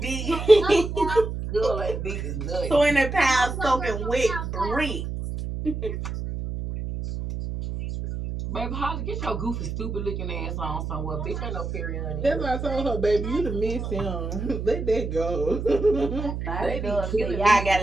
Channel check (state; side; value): noise; right; hum, 5 dB below the sound